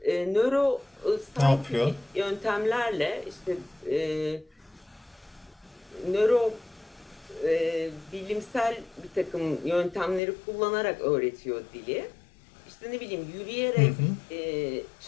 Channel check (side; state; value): right; drops out; at 10.2 s